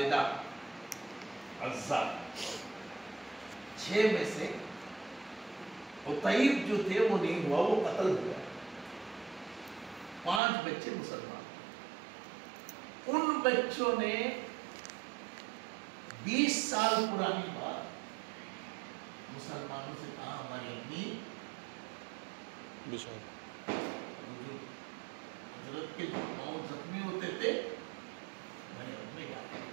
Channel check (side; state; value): left; drops out; at 10.4 s